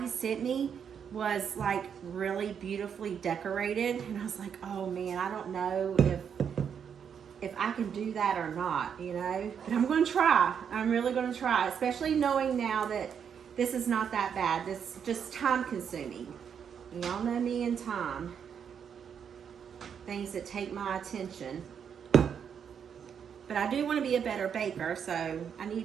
sent me was like really beautifully decorated, and I was like, oh man, I don't know if I can do that or not, you know, but I'm going to try. I'm really going to try, especially knowing now that this is not that bad. This is just time consuming. Y'all know me and time. Things that take my attention. But I do want to be a better baker, so I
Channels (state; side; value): quieter; left; 7.6 dB